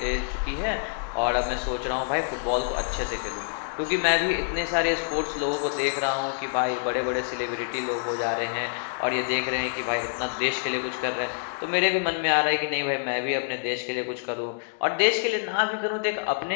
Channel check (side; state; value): right; silent; digital silence